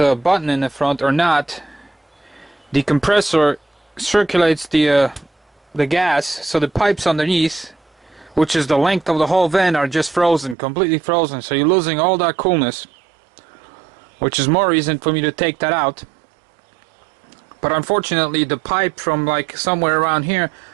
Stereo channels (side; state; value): left; drops out; at 10.6 s